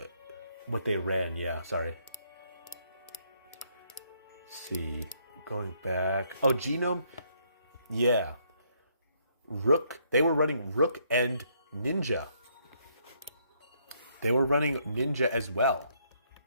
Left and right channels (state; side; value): inverted; both; correlation -0.71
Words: what they ran? Yeah, sorry. Let's see, going back. Oh, Genome. Yeah. Rook. They were running Rook and Ninja. They were running Ninja as well.